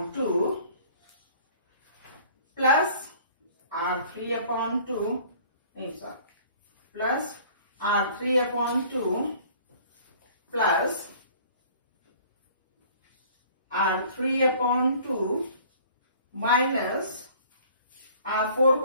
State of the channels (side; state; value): both; inverted; correlation -0.52